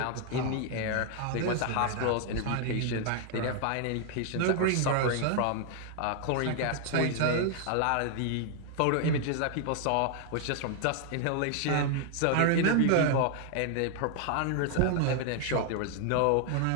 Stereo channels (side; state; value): both; different; correlation 0.00